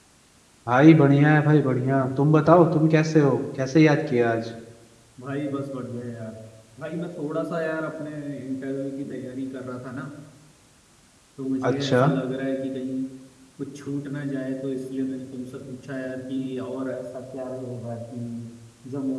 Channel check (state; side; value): identical; both; correlation 1.00